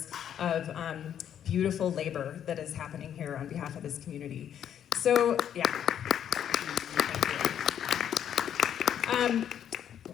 of beautiful labor that is happening here on behalf of this community. So, yeah. Thank you.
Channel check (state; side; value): quieter; right; 9.5 dB